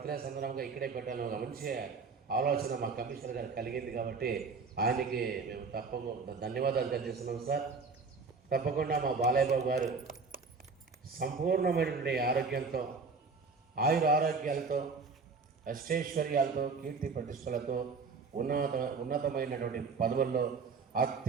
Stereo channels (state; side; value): quieter; left; 4.7 dB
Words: సందర్భంగా ఇక్కడే పెట్టాలని ఒక మంచి ఆలోచన మా కమిషనర్ గారు కలిగింది. కాబట్టి ఆయనకి మేము తప్పకుండా ధన్యవాదాలు తెలియజేస్తున్నాం సార్. తప్పకుండా మా బాలయ్య బాబు గారు సంపూర్ణమైనటువంటి ఆరోగ్యంతో, ఆయురారోగ్యాలతో, అష్టైశ్వర్యాలతో, కీర్తి ప్రతిష్టలతో, ఉన్నతమైనటువంటి పదవుల్లో